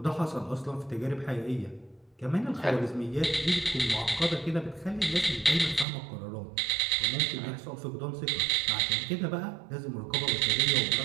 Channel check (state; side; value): drops out; left; at 5.9 s